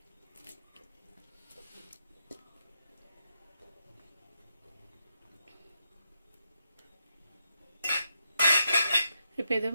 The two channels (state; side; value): inverted; both; correlation -0.83